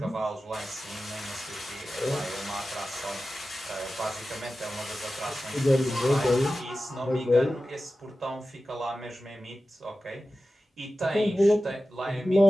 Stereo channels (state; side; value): normal; both; correlation 0.94